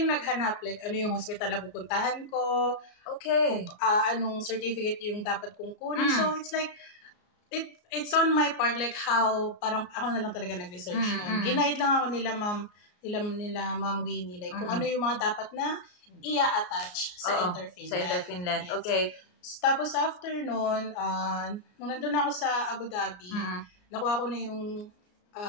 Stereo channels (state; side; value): late; right; 34 ms